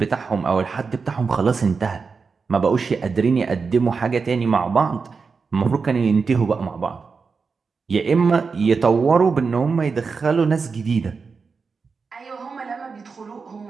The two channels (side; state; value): left; quieter; 5.0 dB